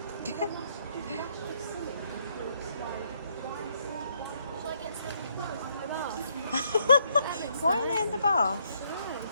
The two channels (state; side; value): inverted; both; correlation -0.73